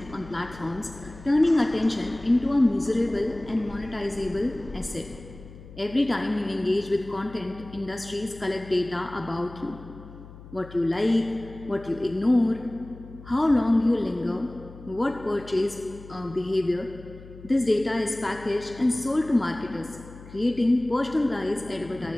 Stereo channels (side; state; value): left; noise; hum, 17 dB below the sound